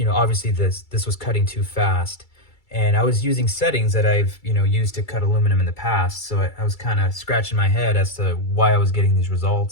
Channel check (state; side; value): late; right; 2.3 ms